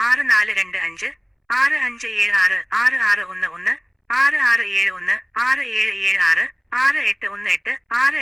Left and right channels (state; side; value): identical; both; correlation 1.00